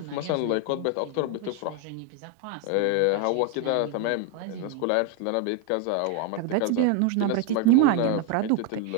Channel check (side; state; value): both; different; correlation 0.01